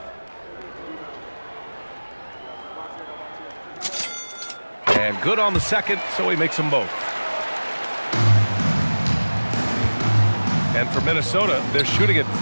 And good on the second, so he makes them both. And for Minnesota, they're shooting it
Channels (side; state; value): both; inverted; correlation -1.00